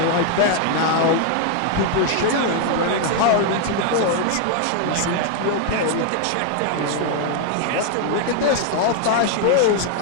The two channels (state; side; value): different; both; correlation 0.00